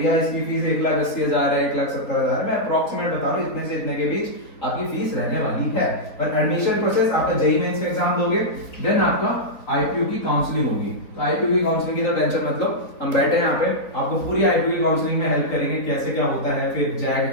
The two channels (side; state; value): right; late; 4.1 ms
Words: इसकी फीस 1,80,000 है, 1,70,000 है, मैं अप्रोक्सीमेट बता रहा हूँ, इतने से इतने के बीच आपकी फीस रहने वाली है। और एडमिशन प्रोसेस आपका जेईई मेंस का एग्जाम दोगे, देन आपका IPU की काउंसलिंग होगी। तो IPU की काउंसलिंग की तो टेंशन मत लो, हम बैठे हैं यहाँ पे, आपको पूरी IPU की काउंसलिंग में हेल्प करेंगे, कैसे क्या होता है, फिर